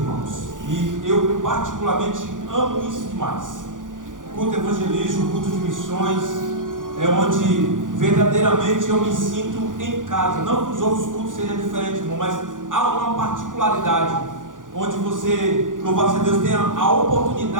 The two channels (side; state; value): left; late; 0.88 ms